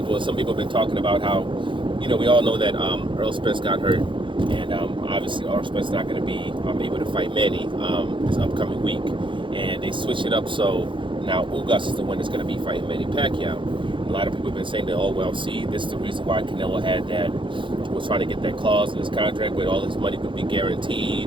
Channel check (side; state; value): left; late; 0.24 ms